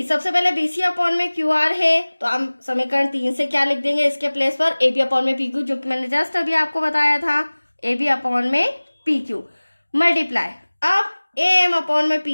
सबसे पहले बीसी अपॉन में क्यू आर है, तो हम समीकरण 3 से क्या लिख देंगे इसके प्लेस पर, ए बी अपॉन में पी क्यू, जो कि मैंने जस्ट अभी आपको बताया था, ए बी अपॉन में पी क्यू मल्टीप्लाई अब ए एम अपॉन में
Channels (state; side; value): inverted; both; correlation -1.00